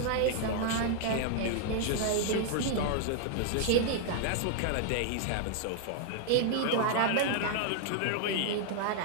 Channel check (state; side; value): different; both; correlation 0.00